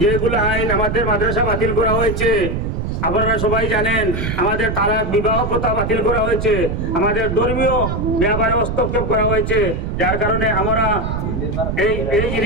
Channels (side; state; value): right; noise; rumble, 2 dB below the sound